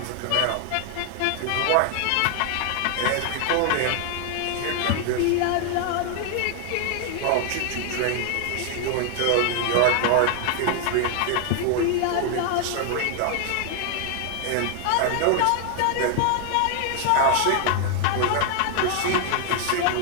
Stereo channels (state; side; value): different; both; correlation 0.00